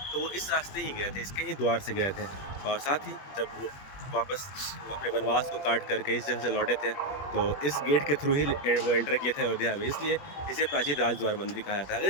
तो वो इस रास्ते ही गए थे, इसके ही द्वार से गए थे। और साथ ही जब वो वापस अपने वनवास को काट करके इस जगह से लौटे थे, तो इस गेट के थ्रू ही वो एंटर किए थे अयोध्या में, इसलिए इसे प्राचीन राजद्वार मंदिर कहा जाता है। अगर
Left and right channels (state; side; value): late; right; 21 ms